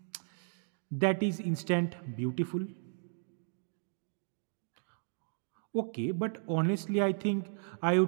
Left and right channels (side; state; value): left; silent; 55 dB below the other